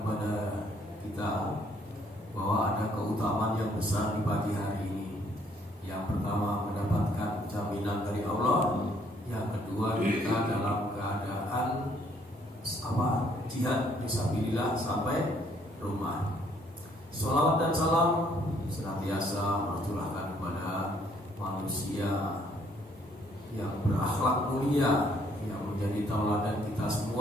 kepada kita bahwa ada keutamaan yang besar di pagi hari ini. Yang pertama, mendapatkan jaminan dari Allah. Yang kedua, kita dalam keadaan jihad fisabilillah sampai rumah. Sholawat dan salam senantiasa tercurahkan kepada manusia yang berakhlak mulia, yang menjadi tauladan kita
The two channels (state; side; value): normal; both; correlation 0.65